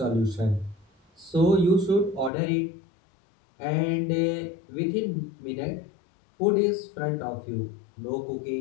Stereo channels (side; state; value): right; drops out; at 2.3 s